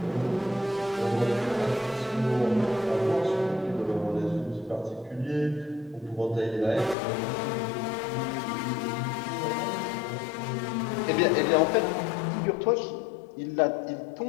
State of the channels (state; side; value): drops out; right; at 7.0 s